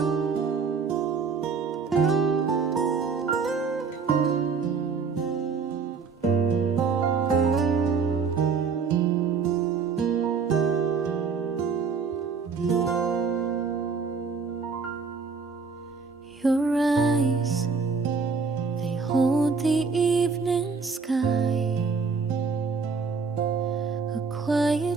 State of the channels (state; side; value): quieter; left; 5.2 dB